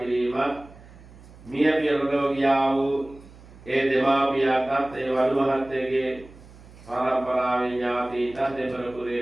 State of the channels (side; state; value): right; noise; hum, 21 dB below the sound